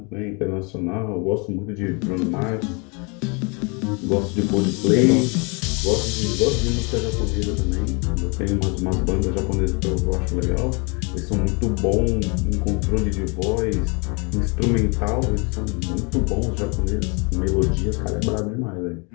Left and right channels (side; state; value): right; quieter; 32.0 dB